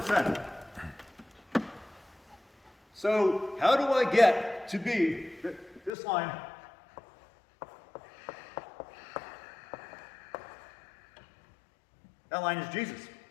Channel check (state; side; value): drops out; right; at 5.9 s